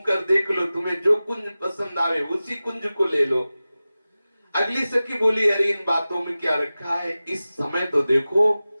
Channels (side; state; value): both; inverted; correlation -0.96